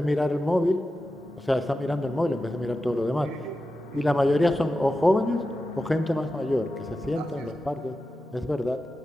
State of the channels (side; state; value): both; normal; correlation 0.92